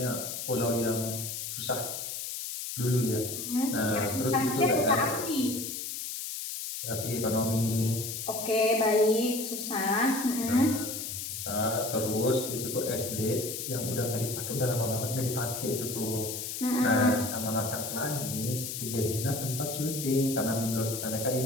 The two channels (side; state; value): left; noise; hiss, 5 dB below the sound